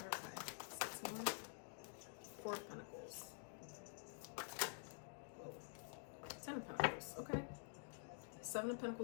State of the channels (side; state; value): right; silent; digital silence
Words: 6 more. 4 of Pentacles. Whoa. 10 of Pentacles. Okay. 7 of